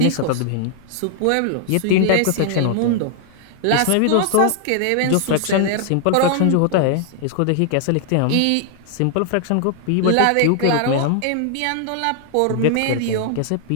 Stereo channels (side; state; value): both; different; correlation 0.00